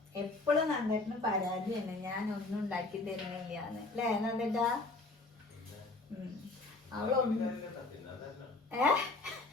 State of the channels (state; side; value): quieter; right; 3.4 dB